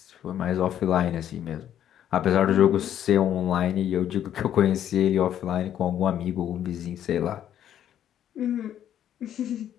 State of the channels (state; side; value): quieter; right; 10.5 dB